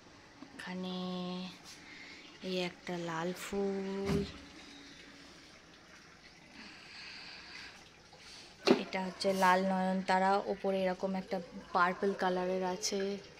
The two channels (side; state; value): both; identical; correlation 1.00